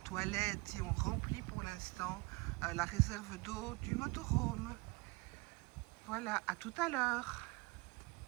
et on remplit pour l'instant la réserve d'eau du motorhome. Voilà, à tout à l'heure.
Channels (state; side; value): quieter; left; 25.3 dB